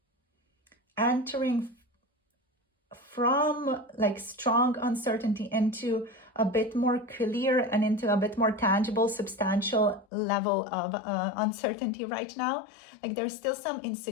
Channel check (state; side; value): drops out; right; at 10.1 s